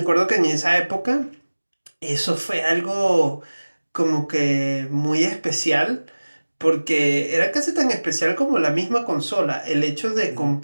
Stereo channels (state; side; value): inverted; both; correlation -1.00